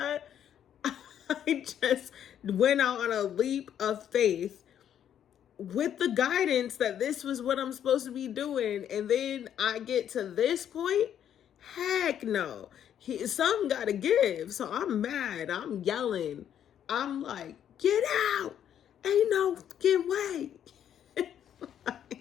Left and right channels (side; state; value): right; quieter; 9.7 dB